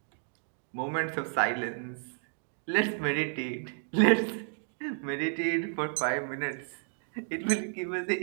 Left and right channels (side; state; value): left; silent; 57 dB below the other